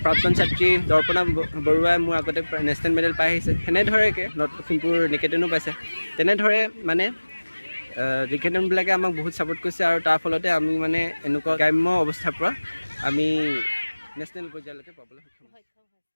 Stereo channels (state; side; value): inverted; both; correlation -1.00